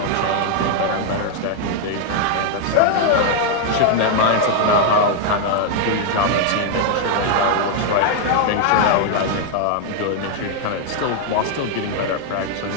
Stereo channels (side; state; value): both; different; correlation 0.00